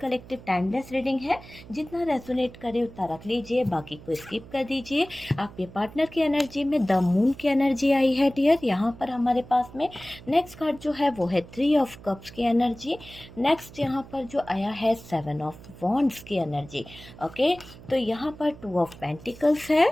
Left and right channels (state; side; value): noise; right; hum, 18 dB below the sound